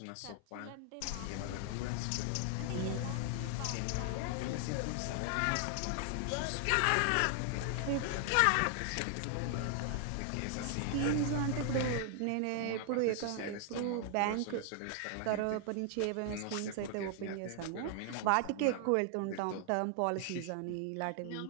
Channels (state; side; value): different; both; correlation 0.00